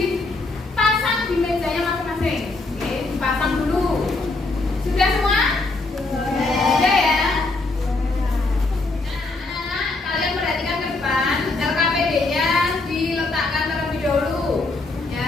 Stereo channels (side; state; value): right; quieter; 3.3 dB